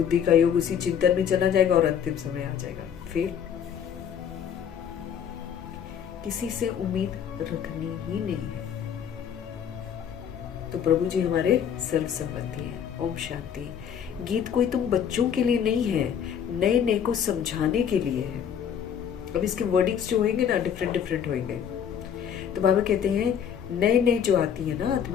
का योग उसी चिंतन में चला जाएगा और अंतिम समय आ जाएगा। फिर किसी से उम्मीद रखनी ही नहीं है। तो प्रभु जी हमारे सर्व संबंधी हैं। ओम शांति। गीत कोई तुम बच्चों के लिए नहीं है, नए नए को समझाने के लिए है। अब इसके वर्डिंग्स जो होंगे ना डिफरेंट डिफरेंट होंगे। तो बाबा कहते हैं नए नए जो आती है ना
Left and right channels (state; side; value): quieter; right; 8.4 dB